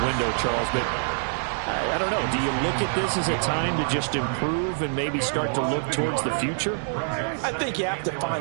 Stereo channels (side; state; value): left; silent; digital silence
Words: window, Charles. But I don't know. Do you look at this as a time to just improve and maybe start to look towards the future? I think you have to